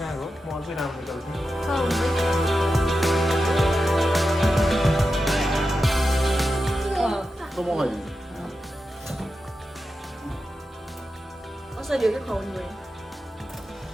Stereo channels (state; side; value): normal; both; correlation 0.90